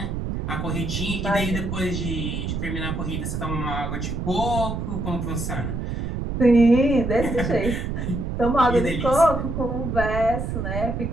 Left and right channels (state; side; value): noise; right; rumble, 3 dB below the sound